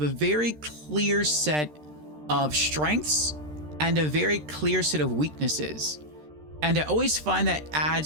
a very clear set of strengths and a very clear set of weaknesses. And I always find that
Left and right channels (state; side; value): late; left; 13 ms